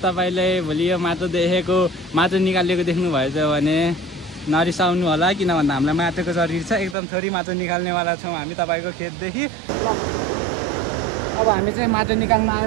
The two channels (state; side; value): drops out; left; at 7.0 s